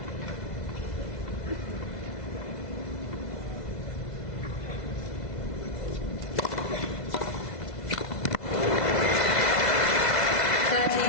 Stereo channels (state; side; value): late; right; 2.0 ms